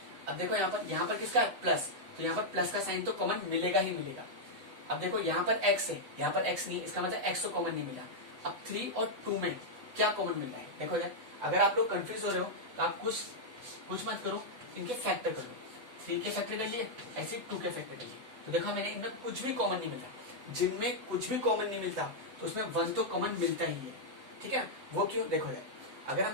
अब देखो यहाँ पर किसका है प्लस, तो यहाँ पर प्लस का साइन तो कॉमन मिलेगा ही मिलेगा। अब देखो यहाँ पर x है यहाँ पर x नहीं, इसका मतलब x तो कॉमन नहीं मिला। अब 3 और 2 में क्या कॉमन मिल रहा है, देखो यार अगर आप लोग कंफ्यूज हो रहे हो तो आप कुछ मत करो, इनके फैक्टर कर लो, 3 के फैक्टर कर लिए ऐसे 2 के फैक्टर कर लिए, तो देखा मैंने इनमें कुछ भी कॉमन नहीं मिलता, जिनमें कुछ भी कॉमन नहीं मिलता तो उसमें 1 तो कॉमन मिलता ही है। ठीक है, वो क्यों, देखो यार अगर हम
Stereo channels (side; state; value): left; late; 8.1 ms